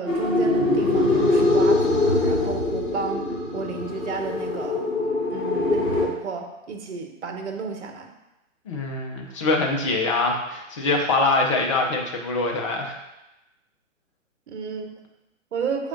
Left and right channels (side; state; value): both; normal; correlation 0.38